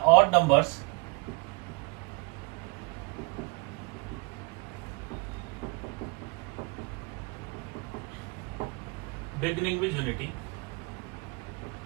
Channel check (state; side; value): quieter; left; 29.5 dB